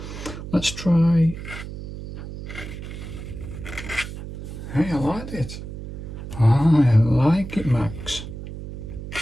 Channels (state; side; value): noise; right; hum, 10 dB below the sound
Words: Let's try. Hey, I like it. I like it, Max.